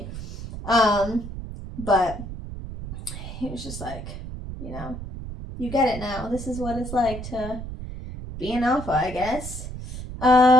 But he was just like, you get it now. This is what it's like to be an alpha, I guess.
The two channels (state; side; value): noise; right; rumble, 9 dB below the sound